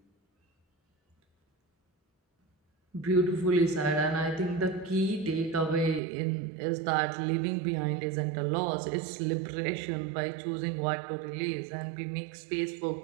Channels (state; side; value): drops out; left; at 6.0 s